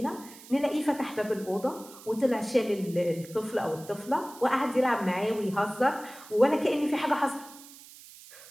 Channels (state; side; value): noise; right; hiss, 19 dB below the sound